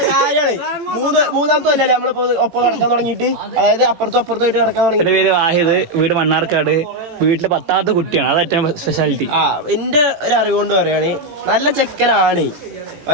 മൂന്നാമത്തെ കൊല്ലല്ലേ നമ്മളിപ്പോ ഒപ്പം കിടക്കാൻ തുടങ്ങിയിട്ട്, അതായത് അപ്പുറത്തും അപ്പുറത്തുമായിട്ട് കിടക്കാൻ തുടങ്ങി. എന്റെ പേര് വാഹിദ്, വീട് മണ്ണാർക്കാട്, വീട്ടിലെ 10ാമത്തെ കുട്ടിയാണ്, അത് ഏറ്റവും സ്പെഷ്യാലിറ്റി. എന്റെ ഒരു അറിവുകൊണ്ട് പറയാണ് നല്ല ചെക്കനാണ്,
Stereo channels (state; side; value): late; left; 18 ms